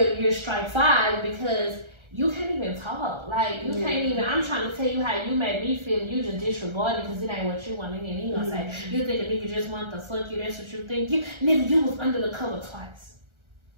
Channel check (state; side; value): late; left; 1.3 ms